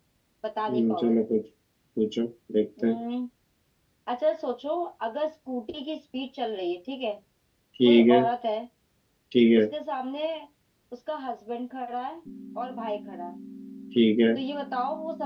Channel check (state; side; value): identical; both; correlation 1.00